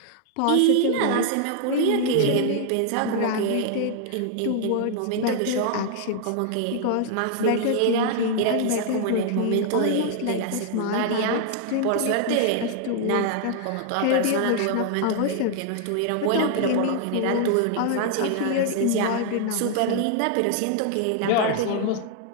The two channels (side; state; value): both; different; correlation 0.00